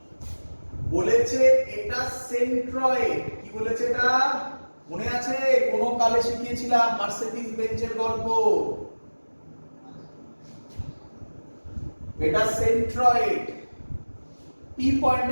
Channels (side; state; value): both; inverted; correlation -1.00